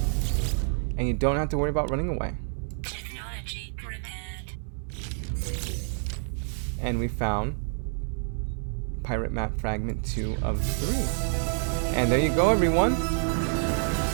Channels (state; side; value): silent; left; digital silence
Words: And you don't have to worry about running away. Technology repaired. And we found Pirate Map Fragment 2 of 3. And there you go, everyone.